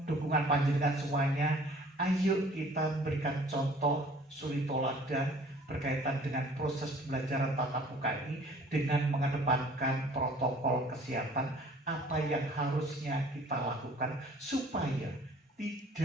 dukungan panjenengan semuanya. Ayo kita memberikan contoh suri toladan berkaitan dengan proses pembelajaran tatap muka ini dengan mengedepankan protokol kesehatan apa yang harusnya kita lakukan supaya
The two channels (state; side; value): normal; both; correlation 0.52